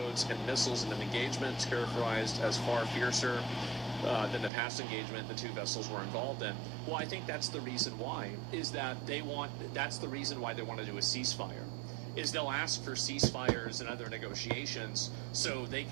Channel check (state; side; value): drops out; left; at 4.5 s